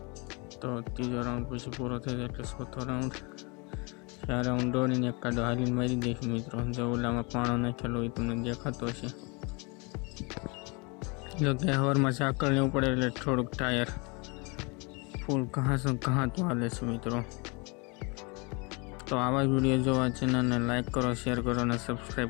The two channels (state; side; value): quieter; right; 30.0 dB